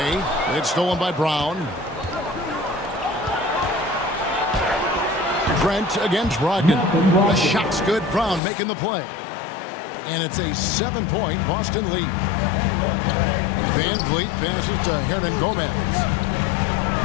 It's stolen by Brown. Trent against Brogdon. The shot's good. Brown making the play. And it's a 7-point Boston lead. Van Vliet passes to Hernan Gomez.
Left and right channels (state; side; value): drops out; right; at 8.4 s